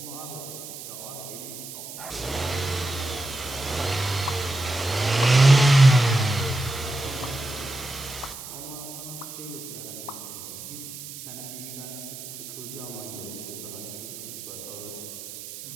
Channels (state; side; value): noise; right; hiss, 11 dB below the sound